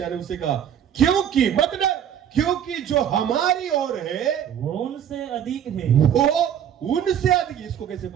ने उसे कहा क्योंकि मत डर, क्योंकि जो हमारी ओर है वो उनसे अधिक है। इसको कैसे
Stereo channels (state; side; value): quieter; left; 9.4 dB